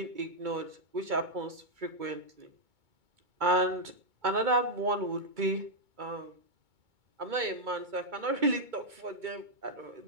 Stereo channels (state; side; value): late; left; 2.2 ms